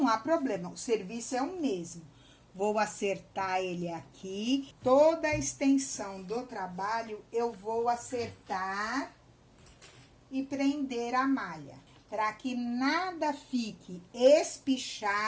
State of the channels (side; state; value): both; identical; correlation 1.00